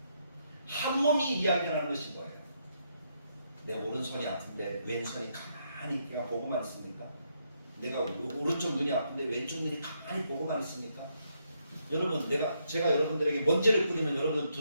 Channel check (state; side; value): inverted; both; correlation -0.77